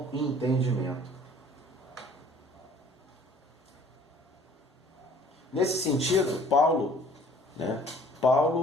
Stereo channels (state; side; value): normal; both; correlation 0.53